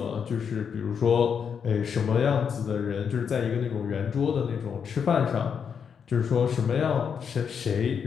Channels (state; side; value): quieter; right; 7.0 dB